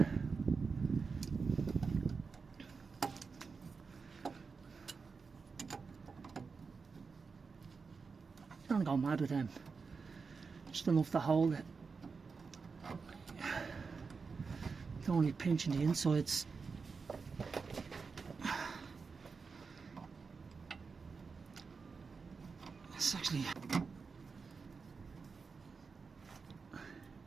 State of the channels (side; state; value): left; quieter; 4.9 dB